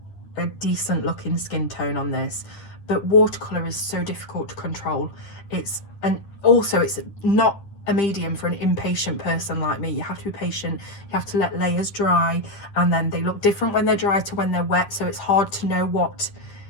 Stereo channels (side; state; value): right; late; 10 ms